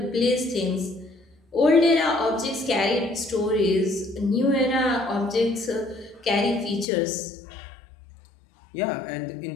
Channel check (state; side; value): drops out; right; at 6.9 s